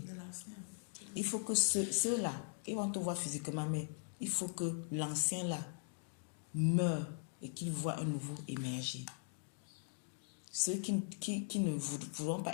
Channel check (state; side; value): silent; right; digital silence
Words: Il faut que ceux-là, ils vont te voir physiquement, mais il faut que l'ancien-là meure et qu'il voit un nouveau émerger. Ceux qui ne voudront pas